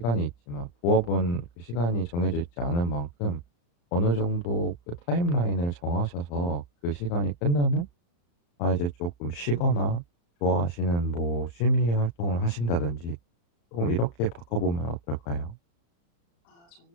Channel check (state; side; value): late; right; 35 ms